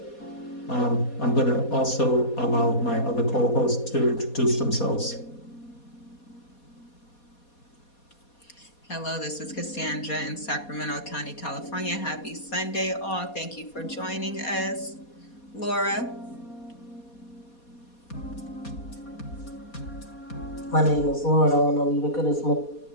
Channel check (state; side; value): late; right; 4.2 ms